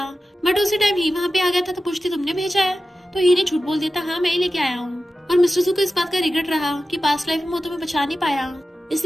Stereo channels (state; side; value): normal; both; correlation 0.93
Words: बट उसी टाइम ही वहाँ पे आ गया था तो पूछती तुमने भेजा है, तो ही ने झूठ बोल दिया था हाँ मैं ही लेके आया हूँ। और मिस्टर जू को इस बात का रिग्रेट रहा कि पास्ट लाइफ में वो तुम्हें बचा नहीं पाया,